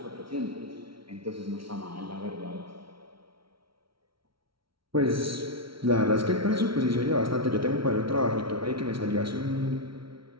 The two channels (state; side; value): late; left; 0.74 ms